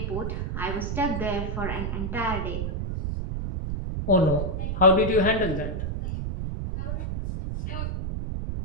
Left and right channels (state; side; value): noise; right; rumble, 3 dB below the sound